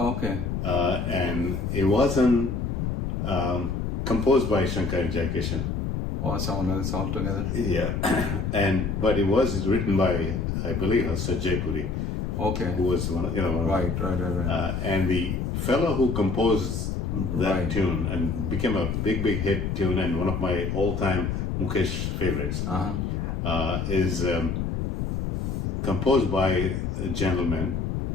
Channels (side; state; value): left; noise; rumble, 2 dB below the sound